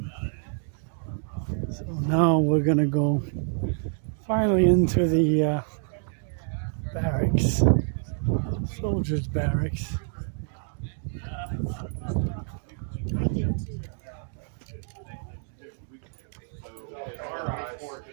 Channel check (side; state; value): left; silent; 60 dB below the other